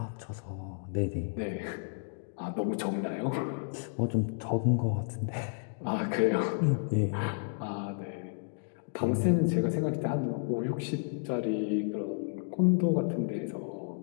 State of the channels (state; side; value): silent; right; digital silence